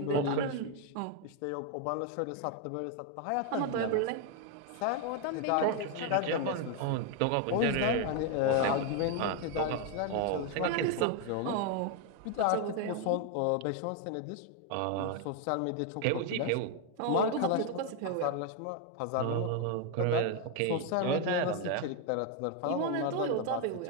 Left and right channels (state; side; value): different; both; correlation 0.01